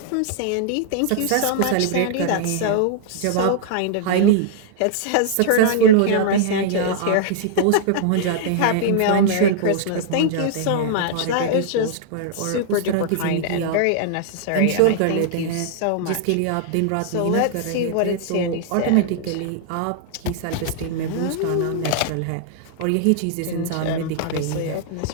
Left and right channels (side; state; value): both; different; correlation -0.01